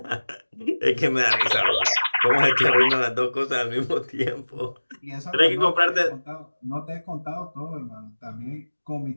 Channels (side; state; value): both; inverted; correlation -1.00